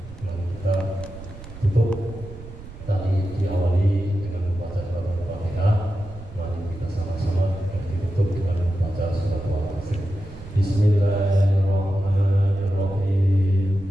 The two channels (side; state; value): right; noise; rumble, 15 dB below the sound